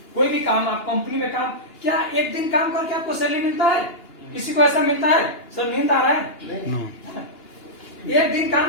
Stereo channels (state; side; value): late; right; 2.9 ms